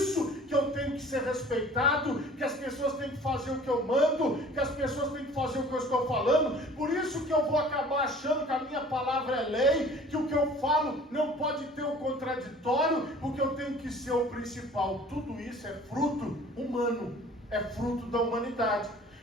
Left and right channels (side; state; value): both; normal; correlation 0.48